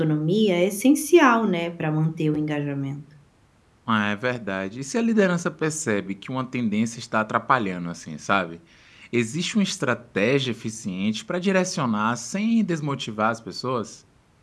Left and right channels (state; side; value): identical; both; correlation 1.00